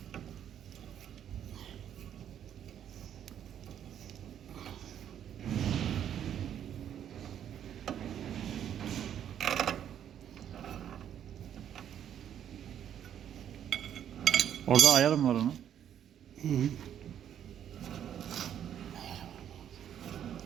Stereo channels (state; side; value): quieter; left; 9.8 dB